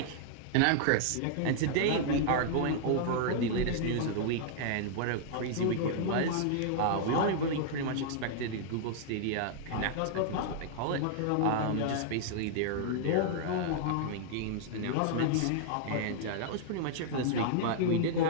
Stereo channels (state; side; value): different; both; correlation -0.01